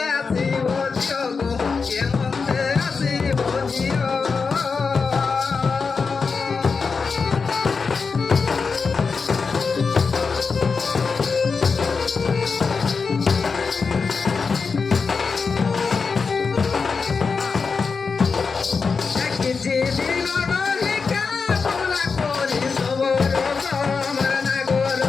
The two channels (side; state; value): right; quieter; 5.0 dB